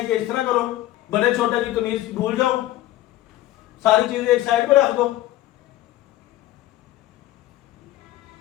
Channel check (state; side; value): quieter; right; 15.0 dB